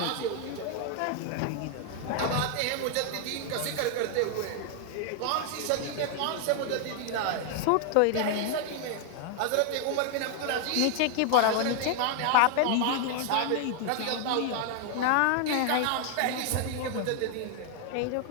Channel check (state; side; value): different; both; correlation 0.00